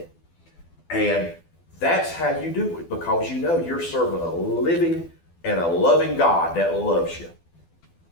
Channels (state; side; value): late; right; 12 ms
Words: And that's how you do it, because you know you're serving a living and a loving God that loves you.